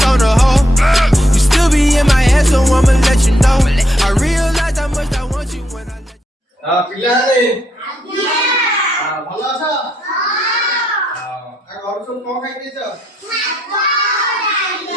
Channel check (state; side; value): normal; both; correlation 0.76